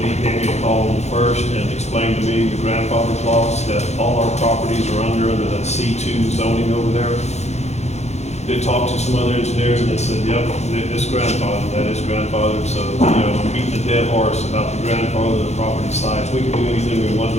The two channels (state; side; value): late; right; 0.32 ms